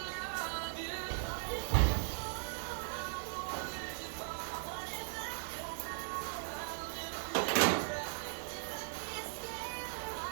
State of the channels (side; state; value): left; silent; digital silence